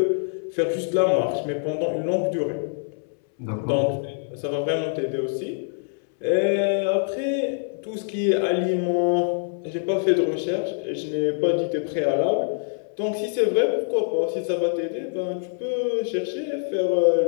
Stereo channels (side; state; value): right; silent; 62 dB below the other